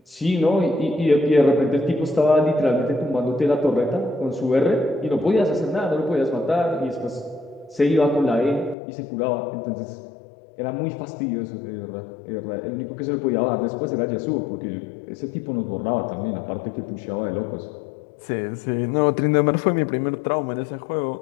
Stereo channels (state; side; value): drops out; right; at 8.8 s